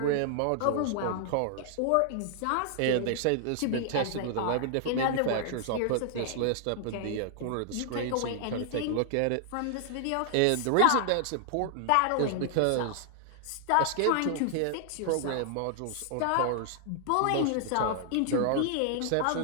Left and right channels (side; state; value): both; different; correlation 0.00